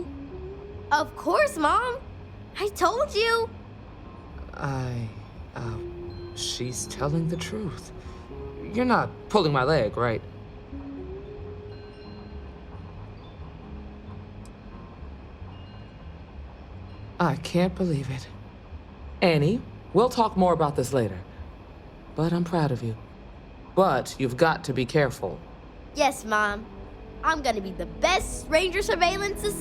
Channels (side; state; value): both; identical; correlation 1.00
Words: Of course, Mom. I told you. She's telling the truth. You're not pulling my leg, right? I can't believe it. Annie, we'll talk more about this later. But I'm proud of you. But you've got to be careful. Yes, Mom. I'm gonna be the best ranger surveillance